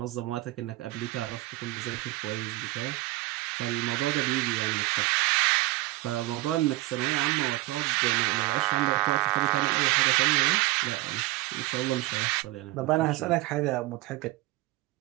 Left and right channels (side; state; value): left; quieter; 20.4 dB